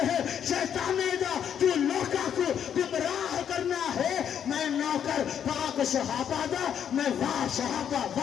है शैताने दा, तू लोका को गुमराह करना है, मैं नौकर पाक सहाबा दा, मैं वाह सहाबा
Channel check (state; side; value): quieter; right; 8.8 dB